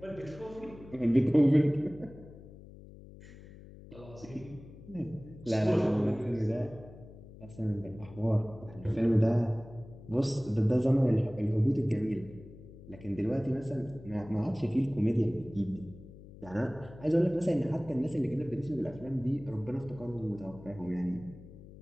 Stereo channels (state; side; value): noise; left; hum, 18 dB below the sound